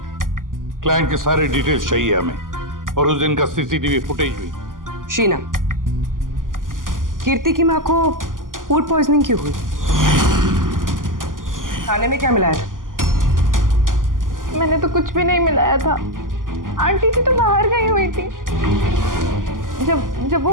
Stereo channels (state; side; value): late; left; 0.89 ms